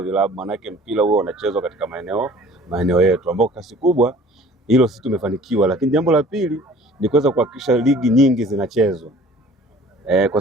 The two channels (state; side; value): normal; both; correlation 0.49